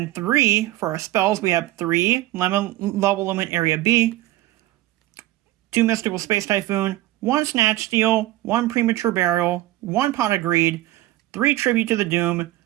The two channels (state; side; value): quieter; left; 16.2 dB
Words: 3 for our spells, we have 3 Level Limit Area B, 2 Mystical Space Typhoon, 1 Snatch Steal, 1 Premature Burial, 1 Pot of Greed, 3 Tribute to the Doom,